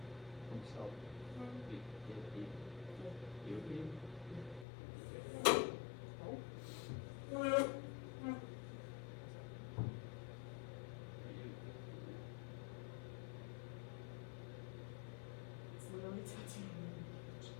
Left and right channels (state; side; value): drops out; right; at 4.7 s